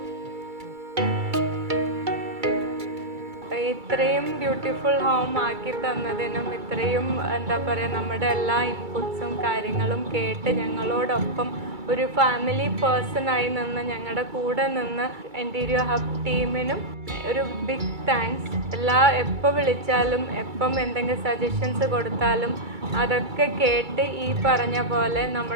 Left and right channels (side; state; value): left; late; 2.3 ms